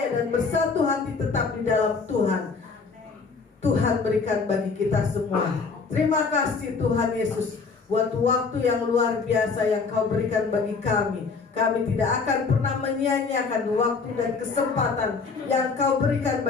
dan bersatu hati tetap di dalam Tuhan, Tuhan berikan bagi kita semua. Terima kasih Tuhan Yesus buat waktu yang luar biasa yang Kau berikan bagi kami. Kami tidak akan pernah menyia-nyiakan waktu dan kesempatan yang Kau berikan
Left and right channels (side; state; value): right; quieter; 4.8 dB